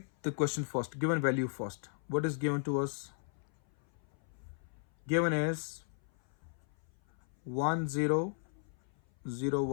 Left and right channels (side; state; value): right; silent; 54 dB below the other